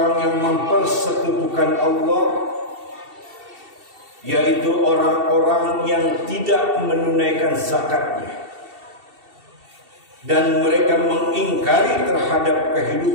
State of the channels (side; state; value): left; late; 2.7 ms